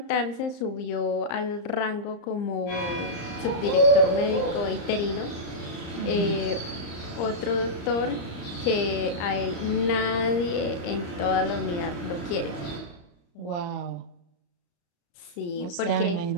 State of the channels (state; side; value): late; right; 34 ms